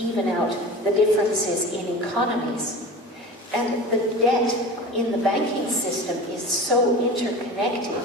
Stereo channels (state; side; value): normal; both; correlation 0.34